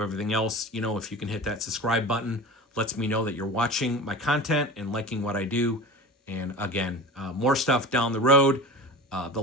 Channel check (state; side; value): normal; both; correlation 0.33